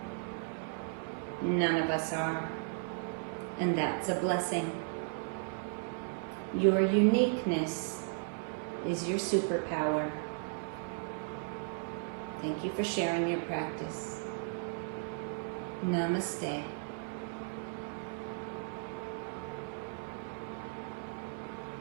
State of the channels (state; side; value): silent; left; 54 dB below the other